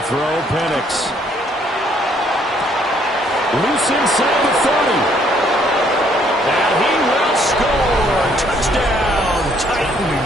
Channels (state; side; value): normal; both; correlation 0.65